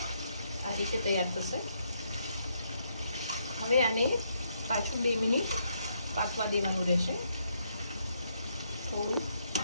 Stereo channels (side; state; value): both; inverted; correlation -0.75